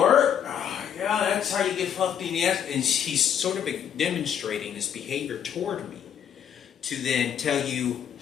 Yeah, that's how you get fucked in the ass." And he's sort of demonstrating this behavior toward me to then tell you,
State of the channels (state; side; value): quieter; right; 8.8 dB